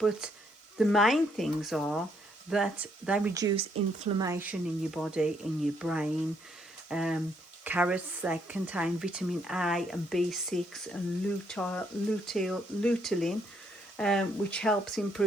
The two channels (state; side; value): normal; both; correlation 0.71